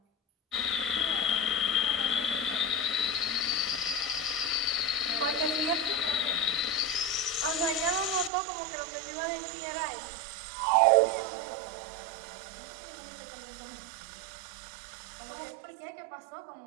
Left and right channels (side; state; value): left; drops out; at 8.3 s